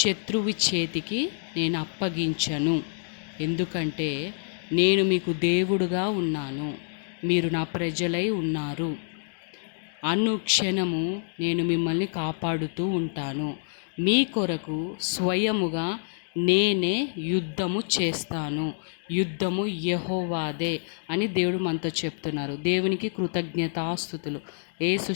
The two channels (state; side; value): silent; right; digital silence